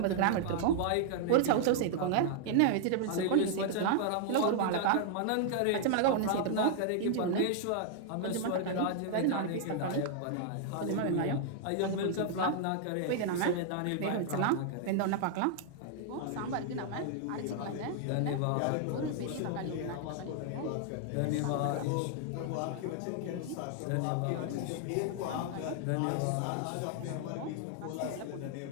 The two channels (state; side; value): different; both; correlation 0.00